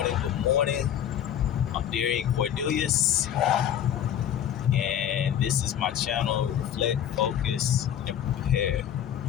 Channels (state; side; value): quieter; right; 10.1 dB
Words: good morning. I'm Darian Cordelius, and this is my channel, Reflect, Focus, and Prepare.